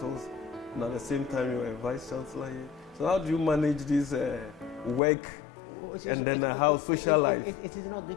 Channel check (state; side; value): drops out; right; at 5.0 s